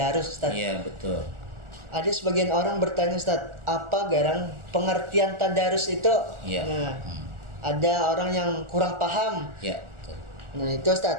Ustadz. Iya, betul. Ada sebagian orang bertanya Ustadz, apa garang pengertian tadarus itu? Iya. Nah, ada orang yang kurang paham. Ya, betul. Nah, itu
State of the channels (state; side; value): late; left; 1.4 ms